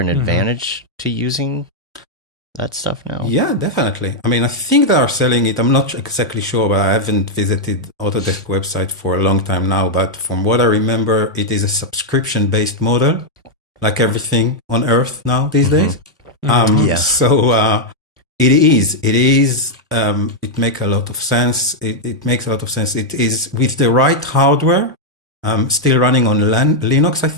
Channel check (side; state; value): both; normal; correlation -0.03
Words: advantage to using that stuff now? Yeah, definitely. I mean, I think they are selling it. I'm not exactly sure, but I haven't visited Autodesk website for a long time now. But from what I remember, it is a subscription-based model, like everything on Earth now these days. So it is. It makes a lot of sense. It makes a lot of sense. It is with the right hardware. Still running on Linux, I